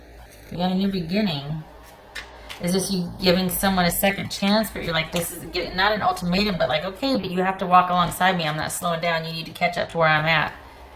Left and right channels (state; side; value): identical; both; correlation 1.00